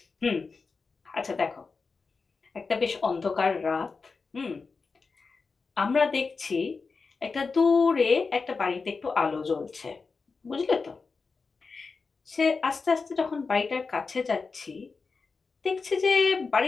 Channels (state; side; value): quieter; right; 4.5 dB